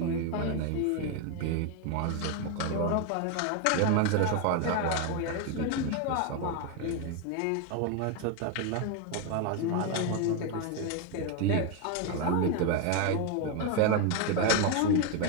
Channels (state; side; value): different; both; correlation 0.01